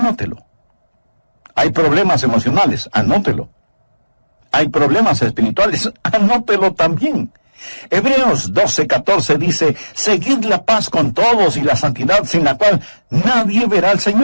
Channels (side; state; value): both; inverted; correlation -1.00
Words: Hay problemas emocionales, anótelo. Hay problemas espirituales, anótelo también. Hebreos 12:14 dice, seguid la paz con todos y la santidad sin la cual nadie verá al